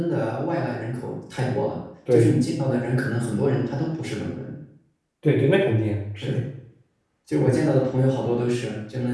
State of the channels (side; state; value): both; identical; correlation 1.00